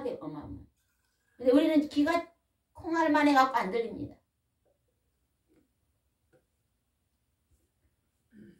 어마어마. 근데 우리는 귀가 콩알만 해갖고 안 들립니다.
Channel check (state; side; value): identical; both; correlation 1.00